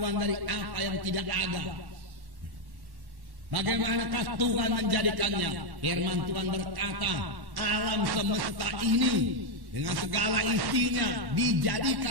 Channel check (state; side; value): late; left; 1.1 ms